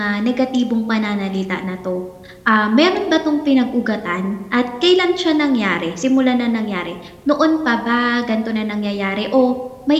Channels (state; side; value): identical; both; correlation 1.00